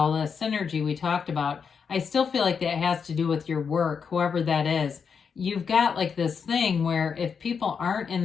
the synergy we talked about, I still feel like that has to do with your work, whoever that is. You've got like this thing where if people aren't in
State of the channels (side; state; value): right; quieter; 6.3 dB